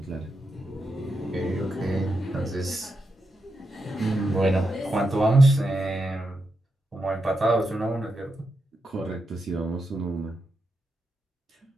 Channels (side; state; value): both; normal; correlation 0.85